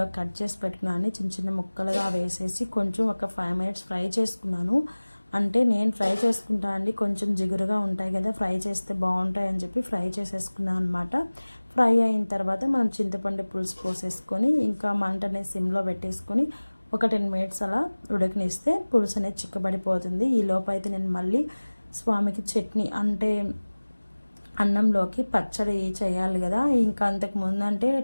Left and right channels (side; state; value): both; inverted; correlation -1.00